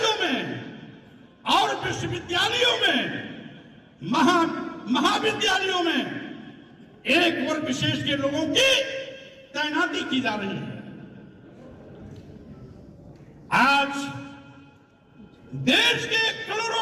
में और विश्वविद्यालयों में, महाविद्यालयों में एक वर्ग विशेष के लोगों की तैनाती की जा रही है। आज देश के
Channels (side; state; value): both; identical; correlation 1.00